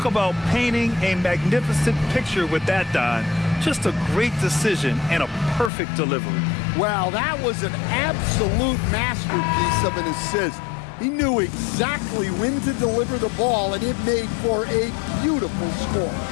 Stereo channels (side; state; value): right; drops out; at 5.7 s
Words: about painting a magnificent picture with that, Don. Just a great decision and a perfect delivery. Wow, that was an absolute masterpiece of an assist. He knew exactly when to deliver the ball, and it made for a beautiful score.